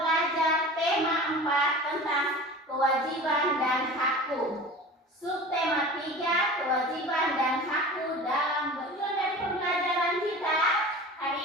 tema 4 tentang kewajiban dan hakku. Subtema 3, kewajiban dan hakku dalam tujuan dari pembelajaran kita hari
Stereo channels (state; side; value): normal; both; correlation 0.37